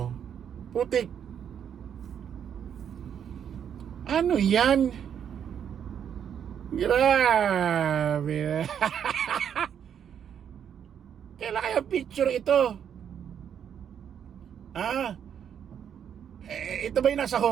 Putik. Ano yan? Grabe. Kailan kaya picture ito? Ito ba yung nasa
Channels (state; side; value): quieter; left; 8.5 dB